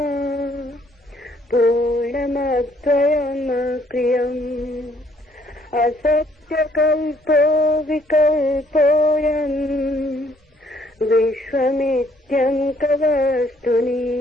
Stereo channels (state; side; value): normal; both; correlation 0.65